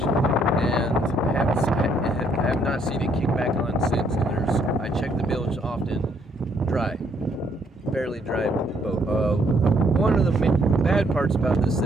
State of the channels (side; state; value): both; normal; correlation 0.69